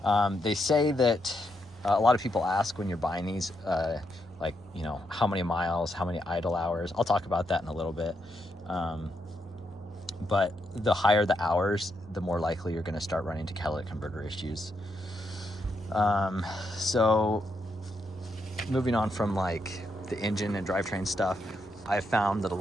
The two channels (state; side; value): normal; both; correlation 0.80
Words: They say that a lot of people ask when you're buying these, like, you know, how many miles, how many idle hours. I'll talk about that in a little bit. But the higher the hours, the more likely you're going to start running into catalytic converter issues. So moving on from like the engine and drivetrain stuff, I've found that a